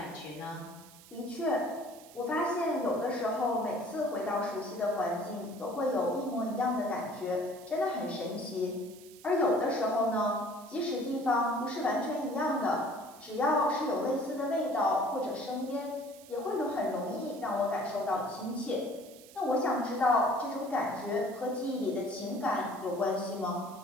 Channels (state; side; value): noise; right; hiss, 21 dB below the sound